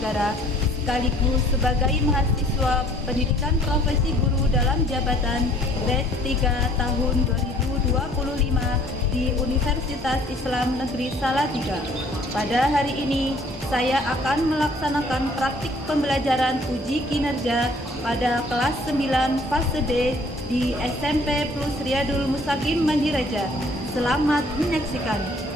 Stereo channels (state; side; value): normal; both; correlation 0.57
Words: sekaligus sebagai mahasiswa pendidikan profesi guru dalam jabatan grade 3 tahun 2025 di Universitas Islam Negeri Salatiga. Pada hari ini saya akan melaksanakan praktik pembelajaran uji kinerja pada kelas 9 fase D di SMP Plus Riyadul Mustaqim Mandireja. Selamat menyaksikan.